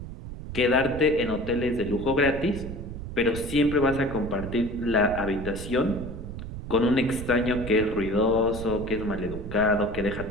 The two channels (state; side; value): noise; right; rumble, 9 dB below the sound